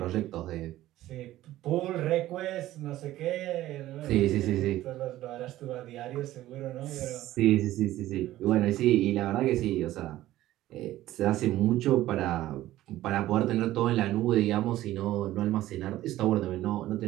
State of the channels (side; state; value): left; quieter; 14.9 dB